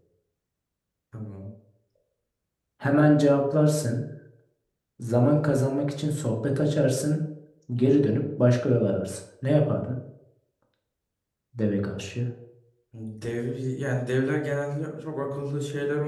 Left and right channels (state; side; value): identical; both; correlation 1.00